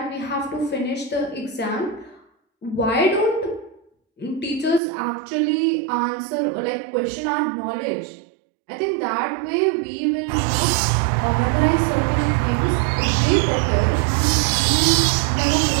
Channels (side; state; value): left; drops out; at 4.8 s